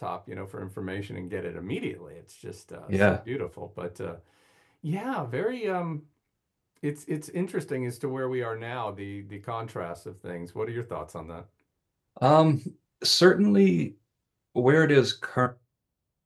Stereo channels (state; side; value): identical; both; correlation 1.00